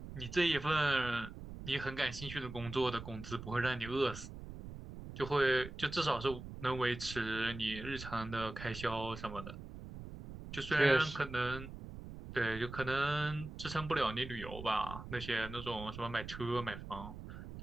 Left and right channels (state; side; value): noise; right; rumble, 11 dB below the sound